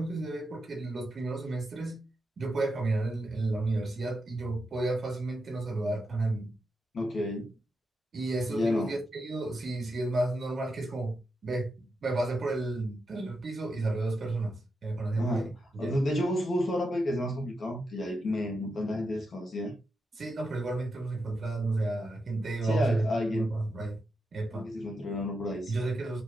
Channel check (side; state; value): both; normal; correlation 0.86